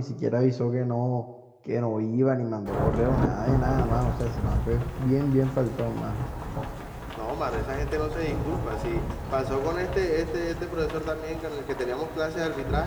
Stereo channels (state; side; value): identical; both; correlation 1.00